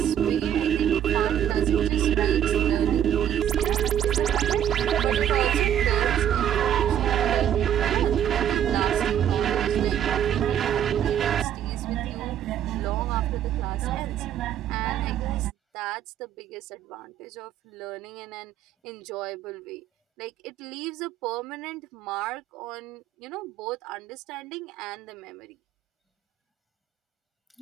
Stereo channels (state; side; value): quieter; left; 10.2 dB